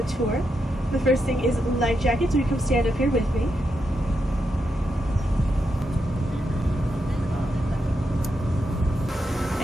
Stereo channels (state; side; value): normal; both; correlation 0.84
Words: tour. The first thing is life jackets, so you come stand up here with me.